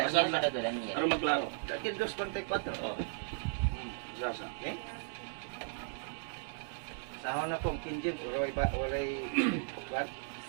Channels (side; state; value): left; silent; digital silence